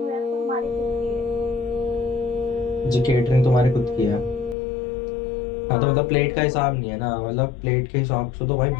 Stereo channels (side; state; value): right; drops out; at 4.5 s